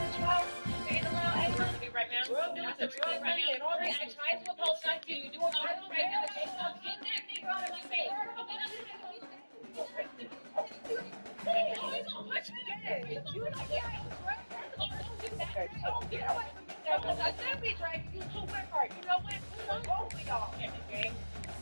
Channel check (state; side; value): inverted; both; correlation -1.00